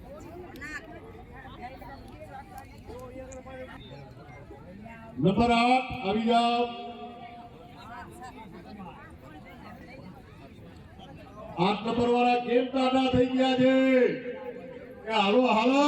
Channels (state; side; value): identical; both; correlation 1.00